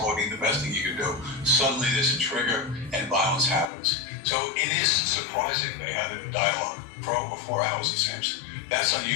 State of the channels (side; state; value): right; drops out; at 3.7 s